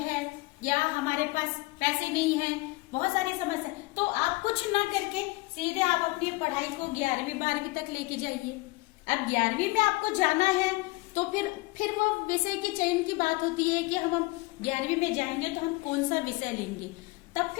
या हमारे पास पैसे नहीं है, बहुत सारी समस्या, तो आप कुछ ना करके सीधे आप अपनी पढ़ाई को 11वीं 12वीं तक लेके जाइए। अब 11वीं में आपको जाना है तो फिर वो विषय की चयन की बात होती है कि हम 11वीं में जाएंगे तो हम कौन सा विषय लेंगे। तब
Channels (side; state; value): right; quieter; 22.9 dB